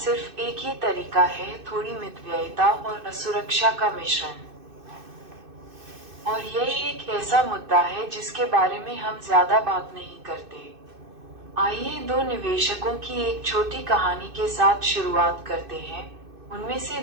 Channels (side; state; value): left; late; 2.6 ms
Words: एक ही तरीका है, थोड़ी मितव्ययिता और असुरक्षा का मिश्रण। और यह एक ऐसा मुद्दा है जिसके बारे में हम ज्यादा बात नहीं करते। आइए दो निवेशकों की एक छोटी कहानी के साथ शुरुआत करते हैं। उनमें से